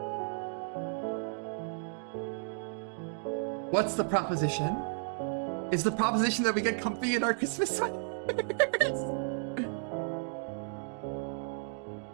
What's the proposition? Is the proposition that we get comfy in our Christmas sweaters?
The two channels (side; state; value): left; silent; 56 dB below the other